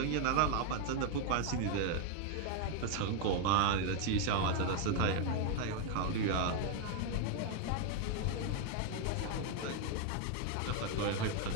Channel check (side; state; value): both; different; correlation 0.01